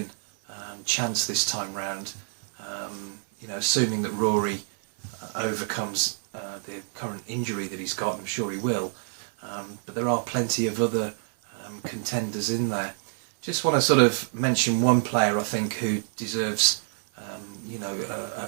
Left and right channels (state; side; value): silent; left; 59 dB below the other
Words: chance this time round. Assuming that Rory overcomes the current injury that he's got, I'm sure he will. But there are plenty of other contenders in there. Just want to sort of mention one player I think who deserves,